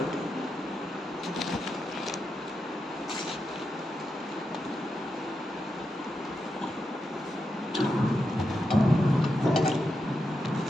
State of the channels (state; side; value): normal; both; correlation 0.86